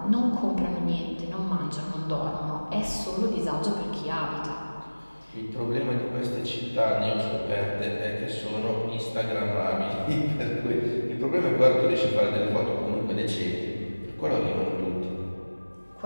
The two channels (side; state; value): both; inverted; correlation -1.00